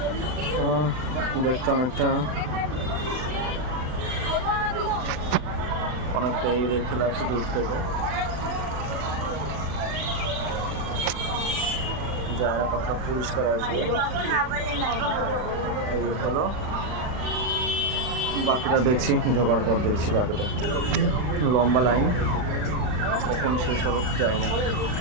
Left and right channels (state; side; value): late; left; 39 ms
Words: দেখতে অনেকটা এই দেখতে লাগছে দূর থেকে। জায়গাটা পরিষ্কার আসবে এই হলো, বাকিটা দেখছি ঢোকার পর দেখছি। বাকিটা লম্বা লাইন, এখন শেষ হবে যায় না।